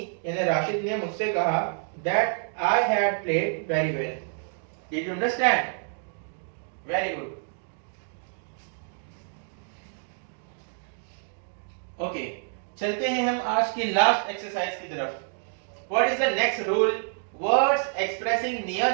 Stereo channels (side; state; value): left; silent; 60 dB below the other